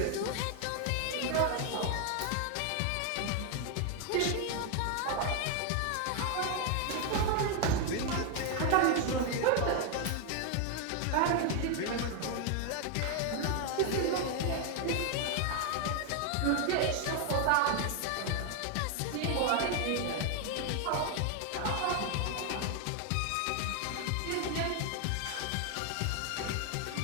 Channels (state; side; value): different; both; correlation 0.00